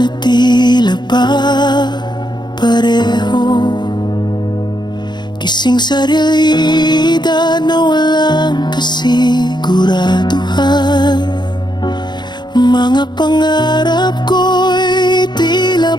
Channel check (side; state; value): right; late; 0.21 ms